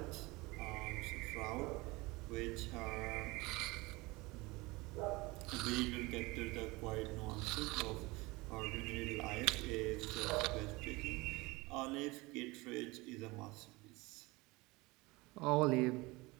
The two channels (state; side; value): quieter; left; 23.2 dB